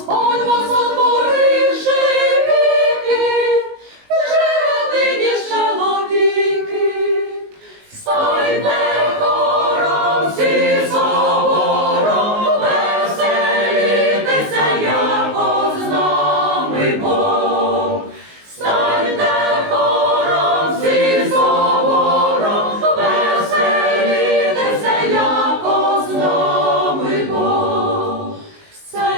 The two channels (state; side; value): late; left; 19 ms